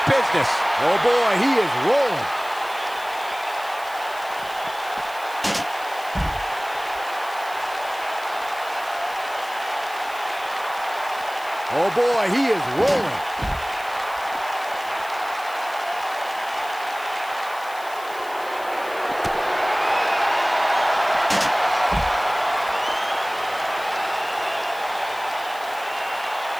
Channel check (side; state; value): left; noise; hiss, 19 dB below the sound